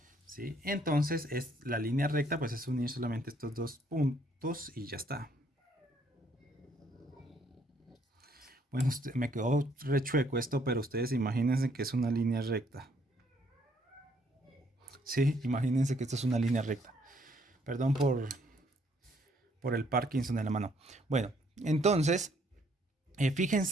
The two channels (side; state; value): both; normal; correlation 0.67